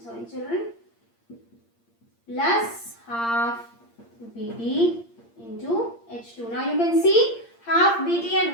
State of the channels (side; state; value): right; late; 8.6 ms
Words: sorry children, plus half BD into H2. Now you can see half BD and